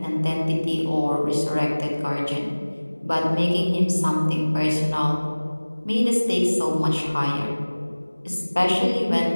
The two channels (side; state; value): both; inverted; correlation -1.00